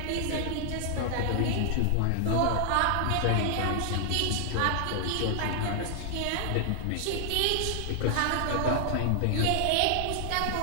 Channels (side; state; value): both; different; correlation 0.00